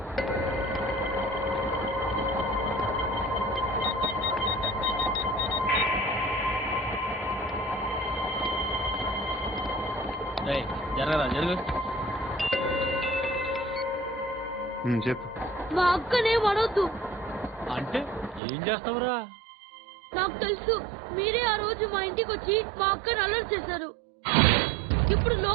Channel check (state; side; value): drops out; left; at 18.4 s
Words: చెప్పు. మా అక్కనే వడొద్దు అంటే ఏం చేస్తావురా? నాకు తెలుసు, మీరే ఆ రోజు మా ఇంటికి వచ్చి మా అక్కని అల్లరి చేశారు. ఇప్పుడు